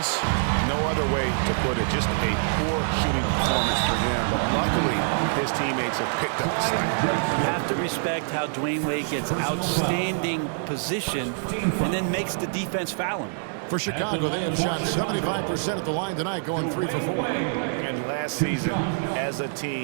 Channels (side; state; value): left; silent; 61 dB below the other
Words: No other way to put it. Just a poor shooting performance for him. But luckily, his teammates have picked up the slack. You have to respect how Dwayne Wade gets outstanding position and then makes the defense foul him. For Chicago, they have shot 75% at the line tonight, going 3 for 4. And last season, as a